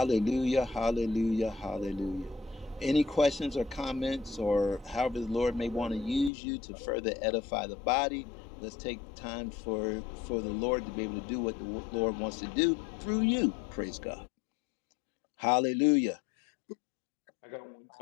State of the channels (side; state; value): right; drops out; at 6.3 s